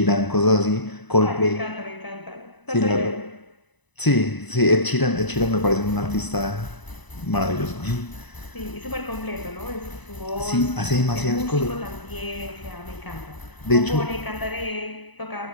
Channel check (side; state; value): right; late; 1.0 ms